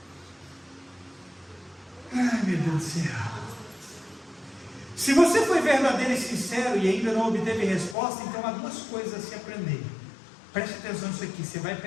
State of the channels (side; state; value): right; drops out; at 8.0 s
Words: Ai, meu Deus do céu. Se você foi verdadeiro e sincero e ainda não obteve resposta, então há 2 coisas a se aprender. Preste atenção nisso aqui. Você vai